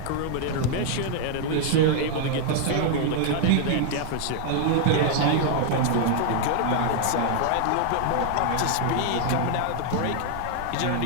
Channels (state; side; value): different; both; correlation 0.00